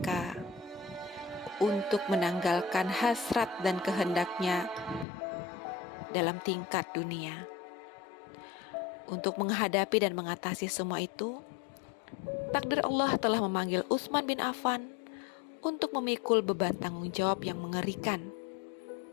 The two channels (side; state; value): right; drops out; at 5.1 s